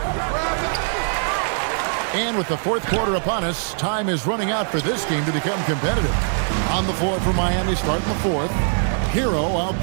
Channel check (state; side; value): silent; left; 64 dB below the other